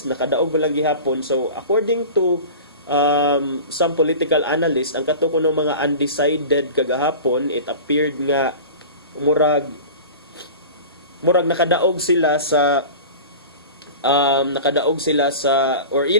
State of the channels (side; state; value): both; inverted; correlation -0.35